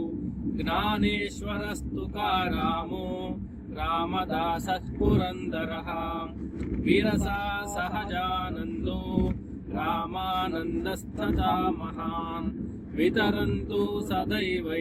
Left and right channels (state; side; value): identical; both; correlation 1.00